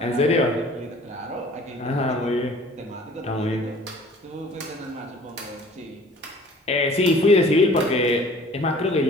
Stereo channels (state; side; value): normal; both; correlation 0.50